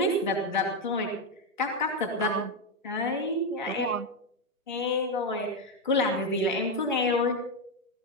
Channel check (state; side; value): normal; both; correlation 0.06